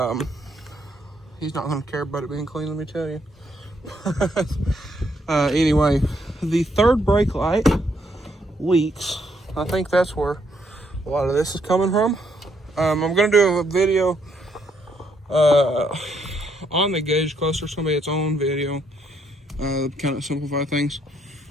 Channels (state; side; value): normal; both; correlation 0.73